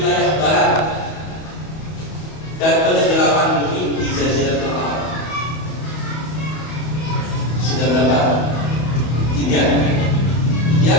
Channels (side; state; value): right; late; 31 ms